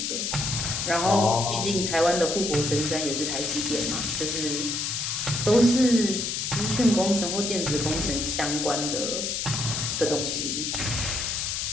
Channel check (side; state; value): left; noise; hiss, 1 dB below the sound